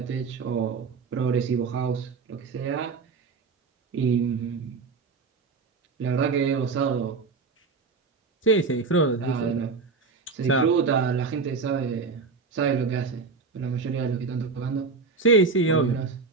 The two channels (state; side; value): quieter; left; 4.7 dB